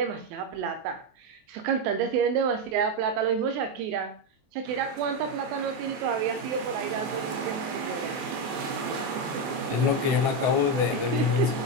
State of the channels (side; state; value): left; late; 24 ms